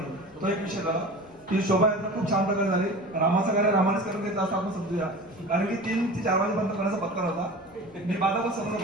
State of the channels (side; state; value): left; noise; rumble, 26 dB below the sound